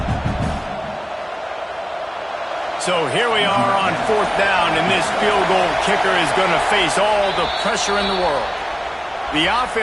So here we are on 4th down, and this field goal kicker is going to face all the pressure in the world. The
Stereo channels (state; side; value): identical; both; correlation 1.00